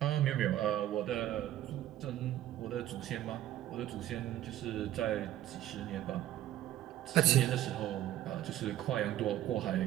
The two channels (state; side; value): quieter; left; 13.2 dB